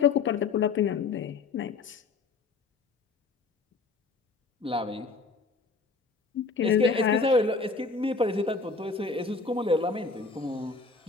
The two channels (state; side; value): quieter; right; 4.3 dB